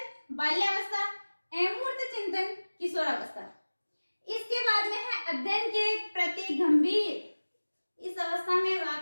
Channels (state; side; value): inverted; both; correlation -1.00